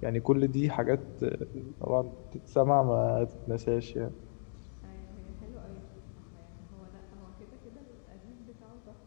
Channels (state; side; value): silent; right; digital silence